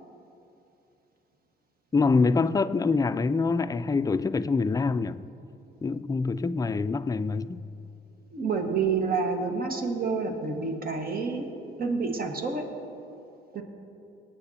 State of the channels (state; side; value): normal; both; correlation 0.69